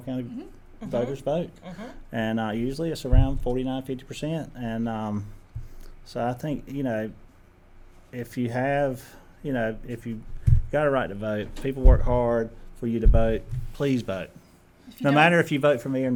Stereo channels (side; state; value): both; identical; correlation 1.00